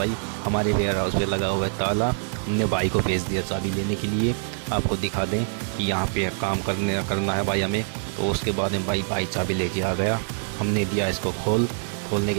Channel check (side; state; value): left; silent; digital silence